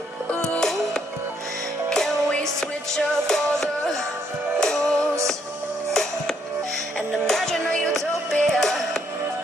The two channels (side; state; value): both; normal; correlation 0.71